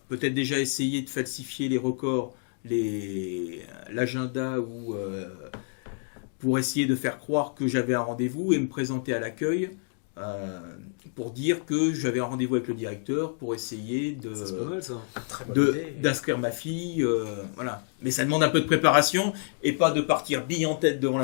peut-être déjà essayer de falsifier les records, l'agenda ou pour essayer de faire croire que j'avais un rendez-vous et me présenter à l'accueil pour dire que j'avais un rendez-vous avec le directeur pour essayer Ça, c'est pas mal ça. Très bonne idée. d'inscrire ma fille, voilà. Mais ça demande un peu de préparation et pas de partir bille en tête devant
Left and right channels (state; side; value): silent; right; 58 dB below the other